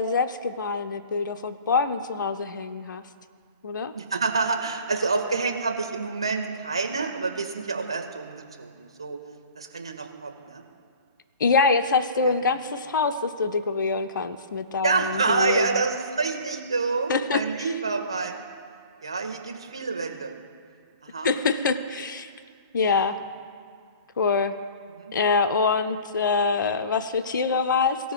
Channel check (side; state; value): both; inverted; correlation -0.45